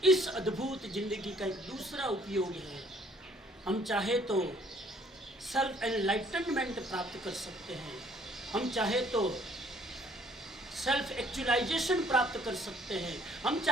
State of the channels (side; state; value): both; normal; correlation 0.60